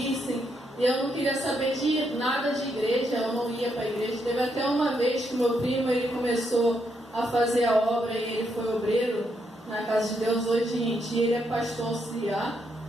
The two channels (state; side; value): normal; both; correlation 0.78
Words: e eu não queria saber de nada de igreja, eu não ia para a igreja. Teve até uma vez que meu primo ele começou a fazer a obra e ele foi obreiro na casa de Deus. Hoje em dia ele é pastor auxiliar